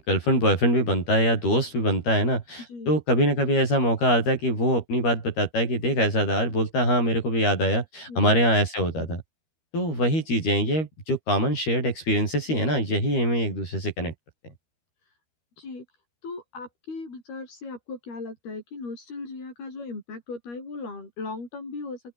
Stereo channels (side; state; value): right; late; 13 ms